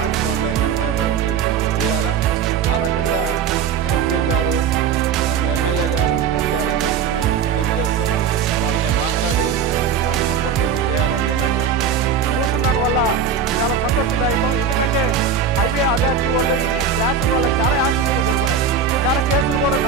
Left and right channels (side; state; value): left; quieter; 6.6 dB